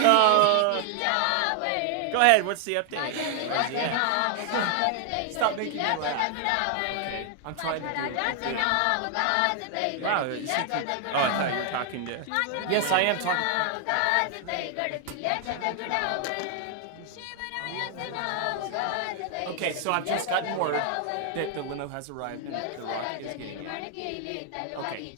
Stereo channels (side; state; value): both; different; correlation 0.00